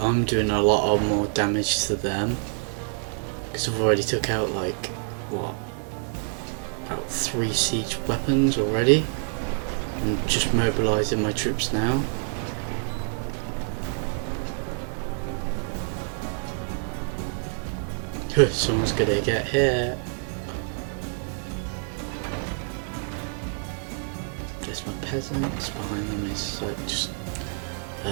doing a lot of more damage to them. Because I've already took out like, what, about 3 siege weapons already. I'm just mobilising my troops now. Someone's gonna get hit. There's my peasants, behind them is like just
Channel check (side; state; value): left; silent; 59 dB below the other